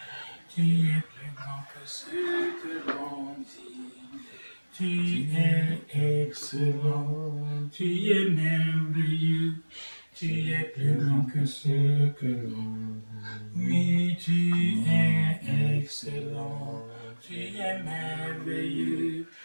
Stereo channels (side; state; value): both; inverted; correlation -1.00